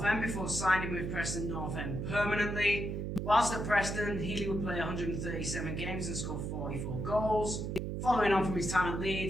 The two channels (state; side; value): noise; right; hum, 3 dB below the sound